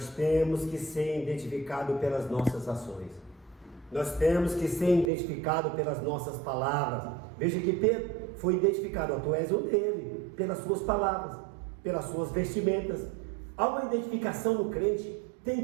temos que ser identificados pelas nossas ações. Nós temos que ser identificados pelas nossas palavras. Veja que Pedro foi identificado, tu és um dele, pelas suas palavras, pelas suas vestimentas. Há uma identificação no crente, tem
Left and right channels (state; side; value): drops out; left; at 5.1 s